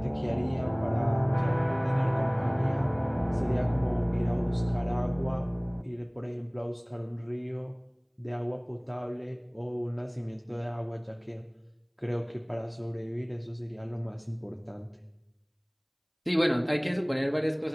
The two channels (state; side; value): identical; both; correlation 1.00